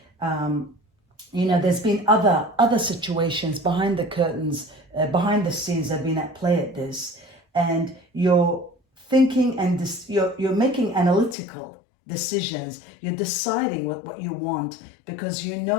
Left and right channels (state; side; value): drops out; right; at 11.4 s